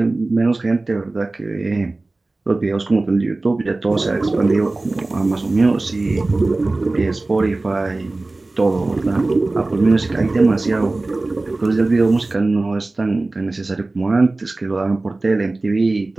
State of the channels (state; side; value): quieter; left; 3.1 dB